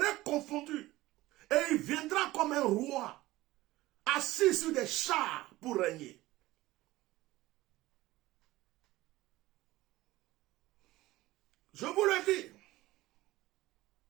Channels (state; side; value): quieter; left; 17.8 dB